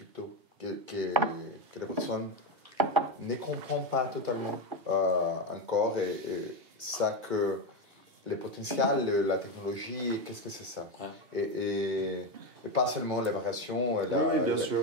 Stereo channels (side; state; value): left; late; 2.7 ms